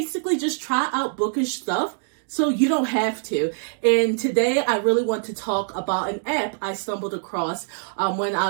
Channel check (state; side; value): silent; left; digital silence